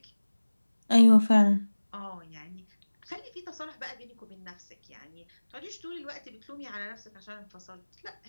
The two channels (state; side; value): inverted; both; correlation -1.00